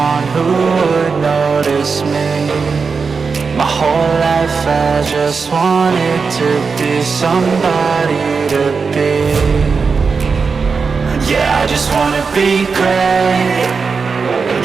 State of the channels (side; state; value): left; quieter; 5.1 dB